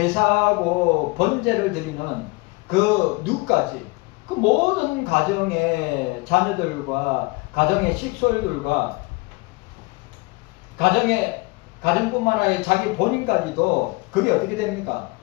번제를 드리는 그 누까지 그 모든 가정의 자녀들과 가정의 식솔들과 가정뿐만 아니라 자기 본인까지도 그게 어떻게 됩니까?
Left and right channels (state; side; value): quieter; right; 25.2 dB